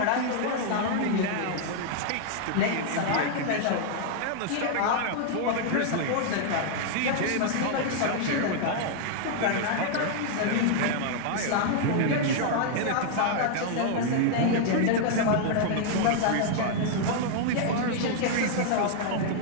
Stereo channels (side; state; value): both; different; correlation -0.01